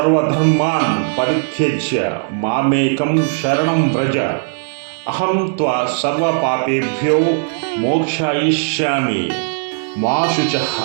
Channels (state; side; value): silent; left; digital silence